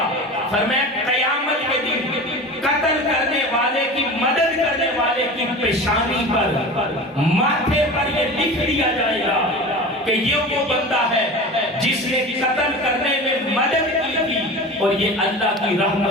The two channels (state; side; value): normal; both; correlation 0.33